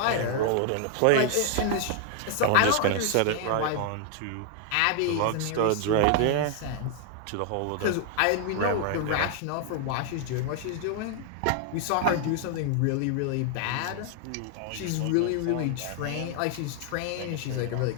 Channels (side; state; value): both; different; correlation 0.00